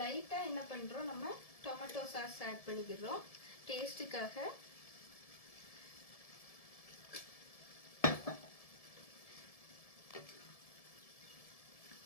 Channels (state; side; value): late; right; 1.7 ms